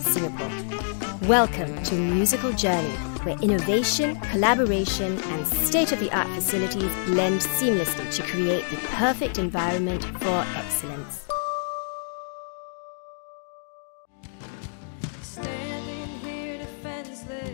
Singapore. Welcome to Musical Journey, where innovation, collaboration, and state-of-the-art facilities blend seamlessly to create the perfect environment for excellence.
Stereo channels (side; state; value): right; silent; digital silence